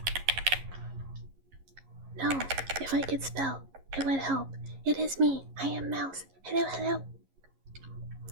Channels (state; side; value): late; left; 11 ms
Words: No, if I could spell, it would help. It is me. I am Mouse. Hello.